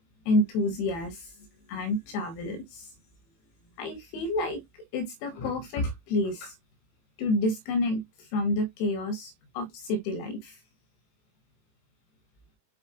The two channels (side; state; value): right; late; 18 ms